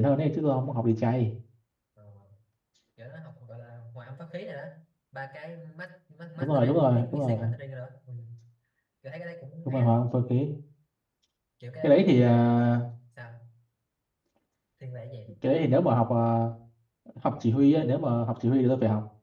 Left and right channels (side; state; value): both; identical; correlation 1.00